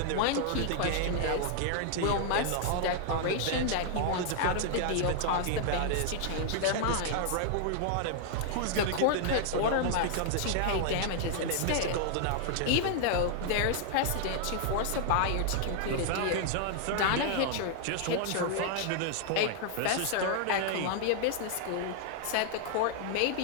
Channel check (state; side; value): different; both; correlation 0.00